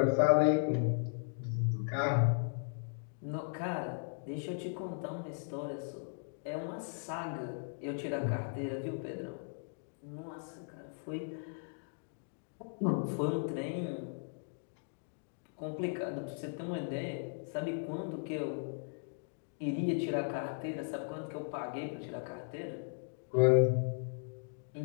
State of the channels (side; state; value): right; silent; digital silence